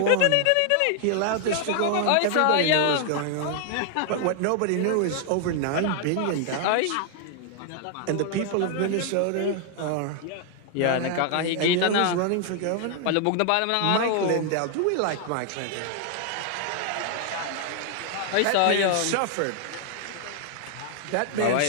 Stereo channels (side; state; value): both; different; correlation 0.00